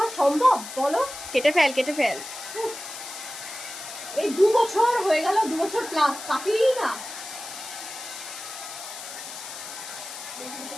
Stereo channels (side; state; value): left; noise; hiss, 11 dB below the sound